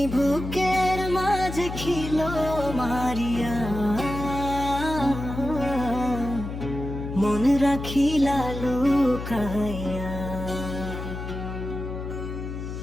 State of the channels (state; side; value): noise; left; hum, 7 dB below the sound